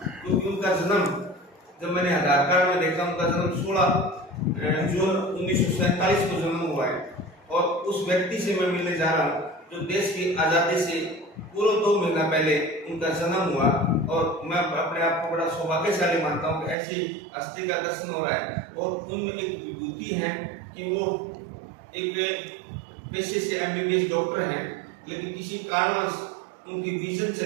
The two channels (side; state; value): left; drops out; at 16.8 s